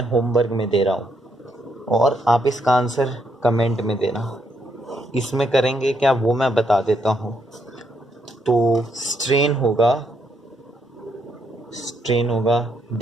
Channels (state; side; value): normal; both; correlation 0.75